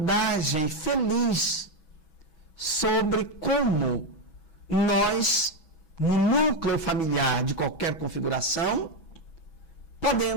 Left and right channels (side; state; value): right; late; 6.1 ms